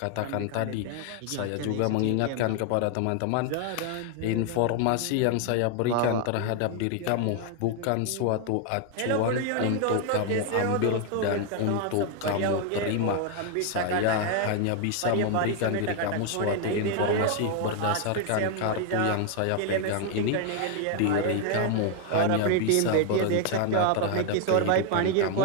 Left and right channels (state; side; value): different; both; correlation 0.01